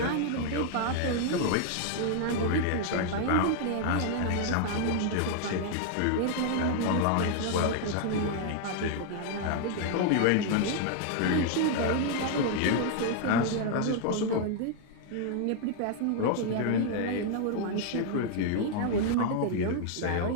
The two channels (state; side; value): different; both; correlation 0.00